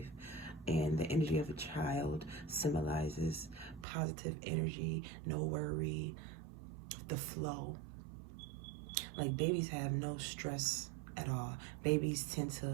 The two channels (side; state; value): left; drops out; at 3.9 s